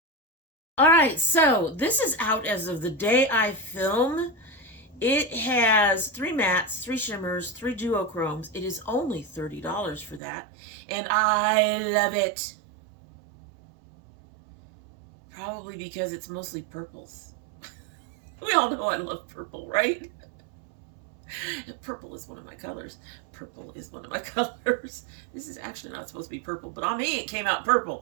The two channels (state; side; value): drops out; left; at 10.2 s